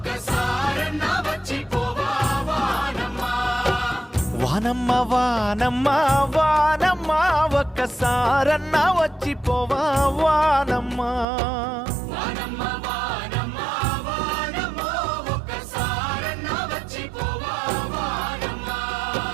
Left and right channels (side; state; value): left; drops out; at 11.2 s